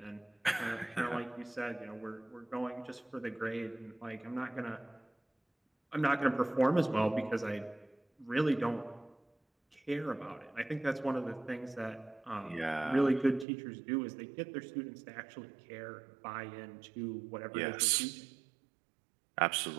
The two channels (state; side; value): drops out; left; at 13.5 s